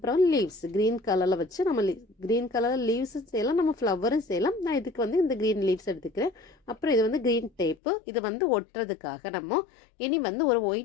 லீவ்ஸ் க்ரீன் கலரில் வச்சு நம்ம க்ரீன் கலரில் லீவ்ஸும் செய்யலாம், நம்ம ஃப்ளவரும் செய்யலாம். நான் இதுக்கு இந்த க்ரீன் லீவ்ஸ் எடுத்துக்கிறேன். அப்புறம் இது க்ரீன் டேப்பு. இது ஒட்டுறதுக்காக நம்ம இனி ஒரு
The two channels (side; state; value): right; drops out; at 7.8 s